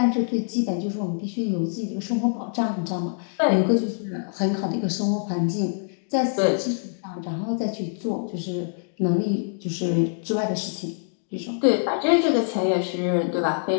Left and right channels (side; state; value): right; silent; digital silence